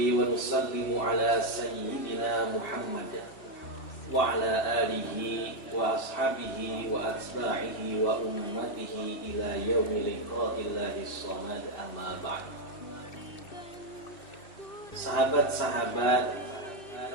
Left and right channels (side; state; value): right; late; 2.6 ms